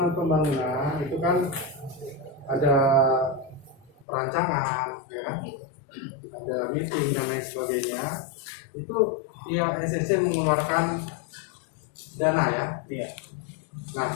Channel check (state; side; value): drops out; right; at 4.0 s